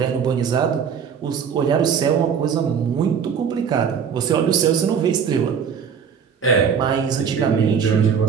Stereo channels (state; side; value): quieter; left; 7.1 dB